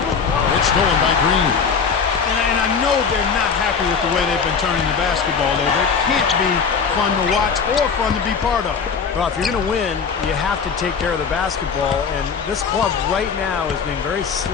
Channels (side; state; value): right; quieter; 6.0 dB